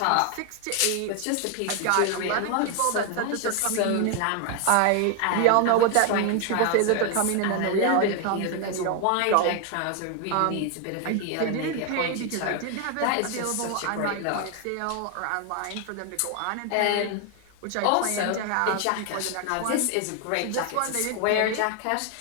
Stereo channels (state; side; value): different; both; correlation 0.01